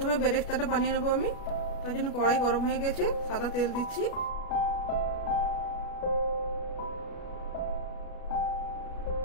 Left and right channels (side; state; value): right; late; 33 ms